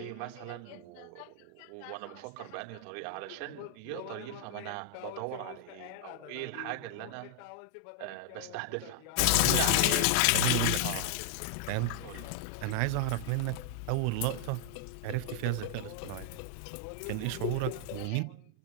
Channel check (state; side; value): different; both; correlation -0.01